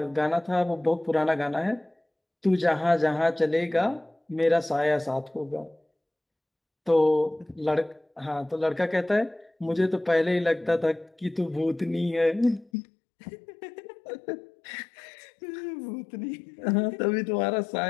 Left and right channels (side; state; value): right; drops out; at 12.7 s